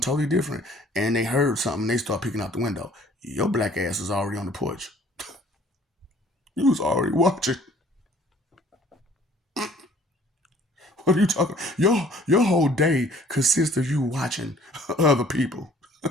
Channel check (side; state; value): both; normal; correlation 0.55